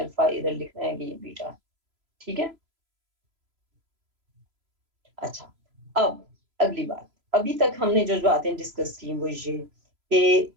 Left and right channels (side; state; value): left; late; 3.0 ms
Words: अल्फा, इधर लिखना है कि ये बीटा। ठीक है। अच्छा, अब अगली बात। अभी तक हमने जो बातें डिस्कस की वो ये कि